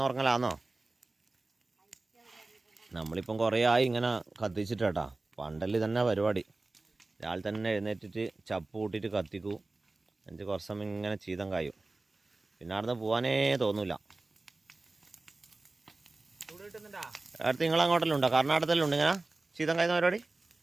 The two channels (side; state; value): left; quieter; 3.2 dB